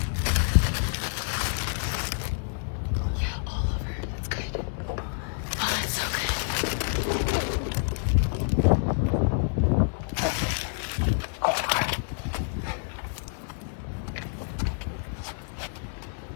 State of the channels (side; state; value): right; silent; 59 dB below the other